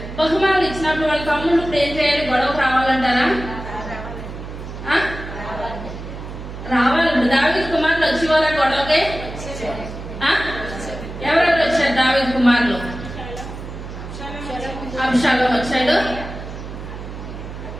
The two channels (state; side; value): noise; right; hum, 10 dB below the sound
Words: బహుమానాలు ఇచ్చినప్పుడు వాళ్ళ తమ్ముళ్ళు ఇప్పుడు ఏం చేయాలి? గొడవకు రావాలంటారా? రావాలి. దావీదు కుమారులు వచ్చేవారా గొడవకి? ఎవరెవరు వచ్చారు దావీదు కుమారులు? అబ్షాలోము వచ్చాడు.